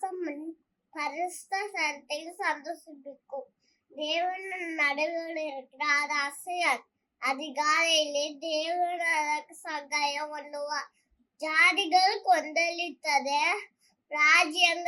பரிசுத்த சரத்தையும் சந்தோஷிப்பிக்கும். தேவன் நடுவில் இருக்கிறார், அது அசையார். அதிகாலையிலே தேவன் அதற்கு சகாயம் பண்ணுவார். ஜாதிகள் கொந்தளித்தது,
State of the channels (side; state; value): both; identical; correlation 1.00